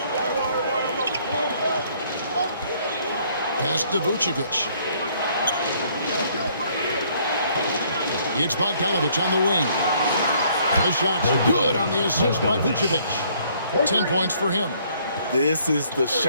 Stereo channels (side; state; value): both; inverted; correlation -0.63